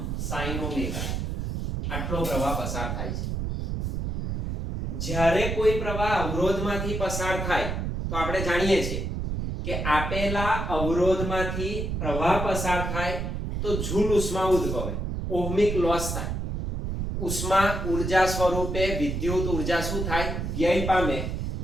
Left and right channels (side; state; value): right; noise; rumble, 2 dB below the sound